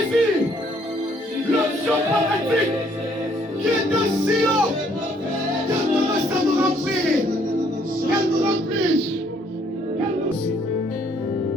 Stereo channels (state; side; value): normal; both; correlation 0.65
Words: l'onction prophétique qui est dans Sion. Qu'elle commence à nous remplir. Qu'elle nous remplisse.